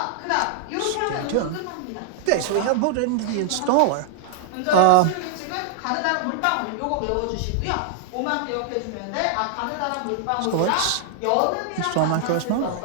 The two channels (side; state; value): both; different; correlation -0.01